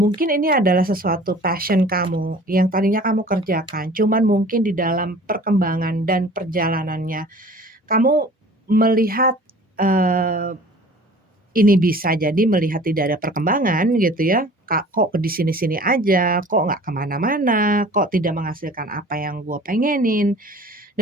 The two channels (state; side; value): normal; both; correlation 0.46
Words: ini adalah sesuatu passion kamu yang tadinya kamu kerjakan, cuman mungkin di dalam perkembangan dan perjalanannya kamu melihat ini bisa jadi melihat tidak ada perkembangan gitu ya, kok di sini-sini aja, kok nggak kemana-mana, kok tidak menghasilkan apa yang gue pengenin.